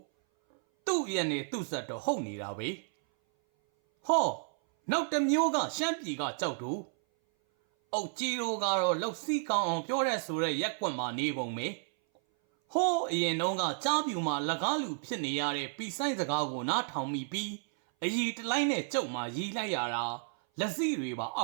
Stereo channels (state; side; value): silent; left; 56 dB below the other